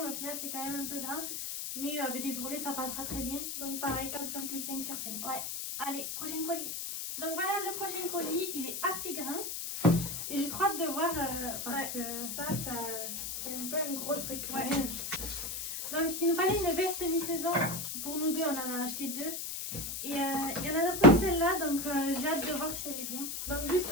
mais au final c'est quand même un peu grand. Mais avec des ourlets ça passera très bien. Donc pareil, 4,5 sur 5. Ouais. Allez, prochain colis. Donc voilà le prochain colis, il est assez grand. Et j'ai trop hâte de voir parce que ça c'est un peu un gros truc. Ouais. Donc il nous fallait une veste mi-saison. Pour nous deux, on en a acheté deux. Et il y en a d'autres celle-là, donc j'ai hâte de voir si elle est bien. Donc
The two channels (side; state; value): left; noise; hiss, 4 dB below the sound